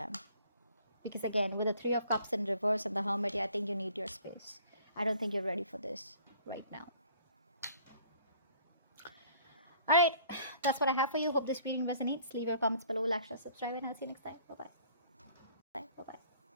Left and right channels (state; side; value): inverted; both; correlation -0.55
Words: Because again, with the Three of Cups in reverse and the Hermit, I think you need your space. I don't think you're ready for this right now. All right, that's what I have for you. Hope this reading resonates. Leave your comments below, like, share, subscribe, and I'll see you next time. Bye-bye.